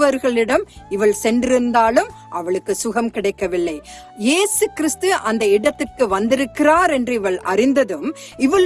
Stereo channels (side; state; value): both; identical; correlation 1.00